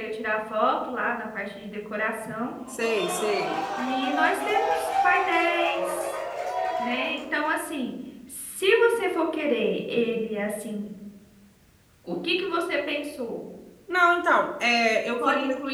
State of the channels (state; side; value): identical; both; correlation 1.00